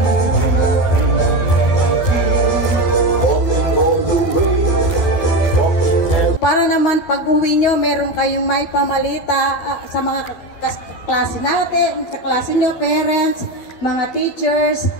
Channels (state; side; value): late; right; 12 ms